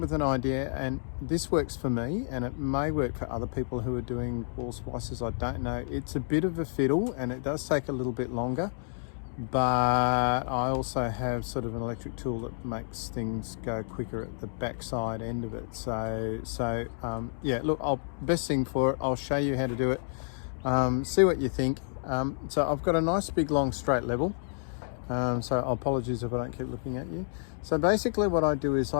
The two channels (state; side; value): silent; right; digital silence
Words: an idea, and this works for me and it may work for other people who are doing wall splicers. I don't know. It's a bit of a fiddle and it does take a little bit longer, but I also have sort of an electric tool that makes things go quicker at the backside end of it. So yeah, look, best thing for it, I'll show you how to do it. See what you think. So I've got a nice big long straight level. So apologies if I don't keep looking at you. So basically what I do is